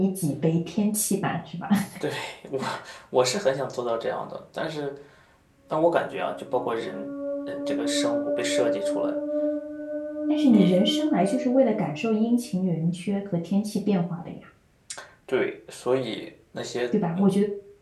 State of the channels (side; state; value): both; identical; correlation 1.00